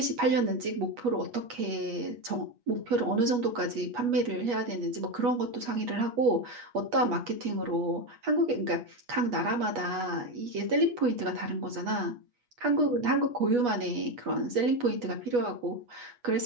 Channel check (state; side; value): late; left; 8.3 ms